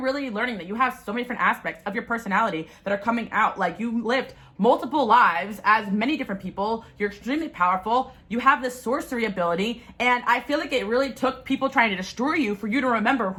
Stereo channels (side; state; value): both; identical; correlation 1.00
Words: really learning that you have so many different aspects of your personality that are coming out. Like, you lived multiple lives as many different people. You're extremely powerful. You have this sorcery ability, and I feel like it really took people trying to destroy you for you to remember